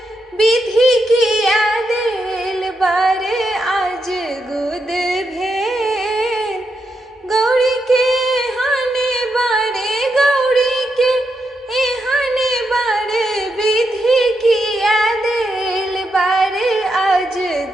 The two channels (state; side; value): normal; both; correlation 0.83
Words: विधि किया देल बारे आज गुद भेल। गौड़ी के हाने बाड़े गौड़ी के हाने बाड़े विधि किया देल बारे आज